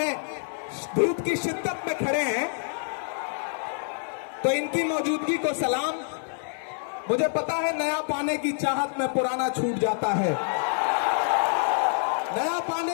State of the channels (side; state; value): right; silent; 59 dB below the other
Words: धूप की शिद्दत में खड़े हैं, तो इनकी मौजूदगी को सलाम। मुझे पता है नया पाने की चाहत में पुराना छूट जाता है, नया